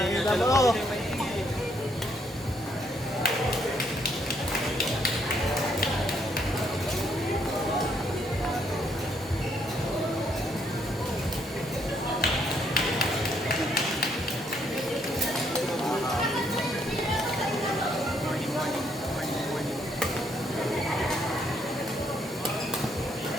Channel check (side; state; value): both; normal; correlation 0.71